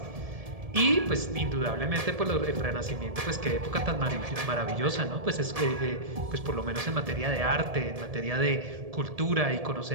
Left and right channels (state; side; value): late; left; 1.7 ms